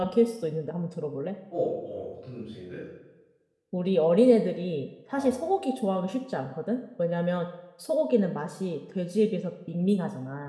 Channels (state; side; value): identical; both; correlation 1.00